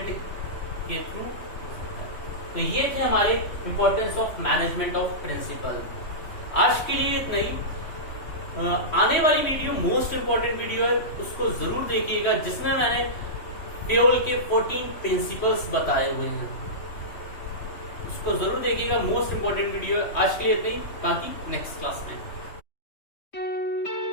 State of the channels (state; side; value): late; right; 3.1 ms